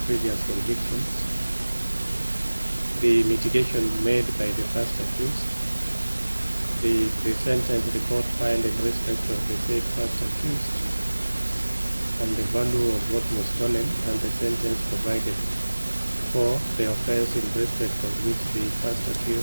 previous convictions. The mitigation made by the first accused, the pre-sentence report filed in respect of the said first accused, and the value of what was stolen, and the sentence provided for the offense in respect of which the first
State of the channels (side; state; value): both; inverted; correlation -1.00